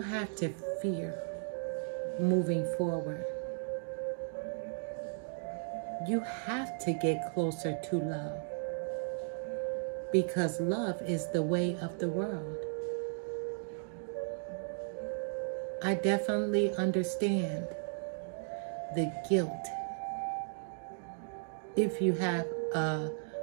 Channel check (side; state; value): left; silent; digital silence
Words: have to fear moving forward. You have to get closer to love, because love is the way of the world. I definitely understand the guilt. If you have a